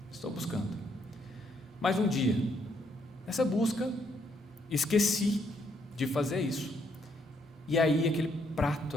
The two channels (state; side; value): normal; both; correlation 0.72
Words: Estou buscando. Mas um dia, nessa busca, esqueci de fazer isso. E aí aquele prato